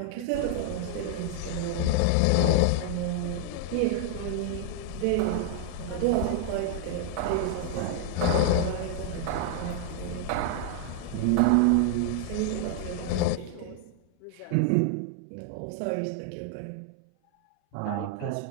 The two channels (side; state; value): both; different; correlation 0.00